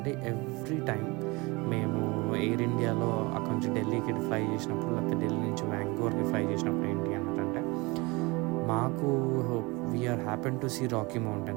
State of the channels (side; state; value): left; quieter; 25.1 dB